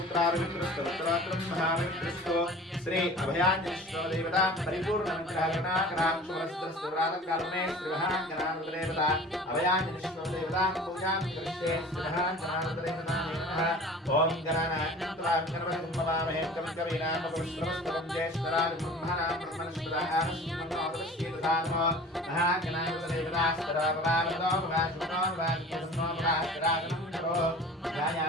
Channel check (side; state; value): both; normal; correlation 0.42